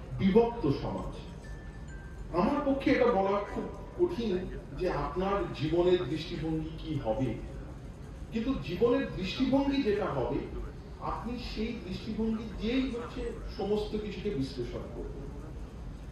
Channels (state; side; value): identical; both; correlation 1.00